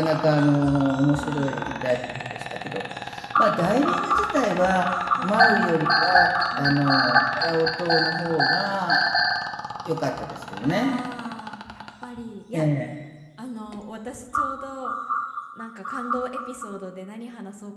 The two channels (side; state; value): both; identical; correlation 1.00